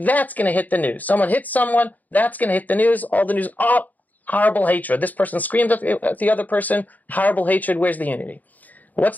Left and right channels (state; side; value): late; right; 0.080 ms